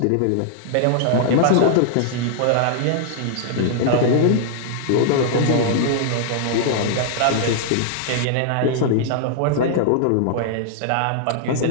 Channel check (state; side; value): different; both; correlation -0.01